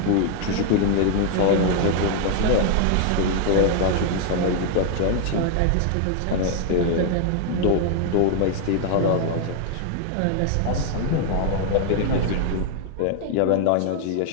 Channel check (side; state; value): both; different; correlation 0.00